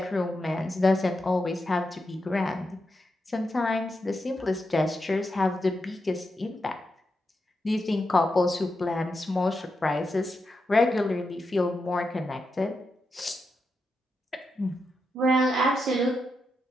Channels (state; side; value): normal; both; correlation 0.86